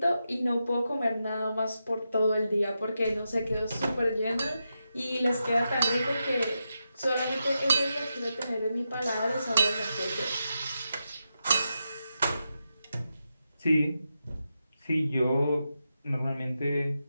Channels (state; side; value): inverted; both; correlation -0.87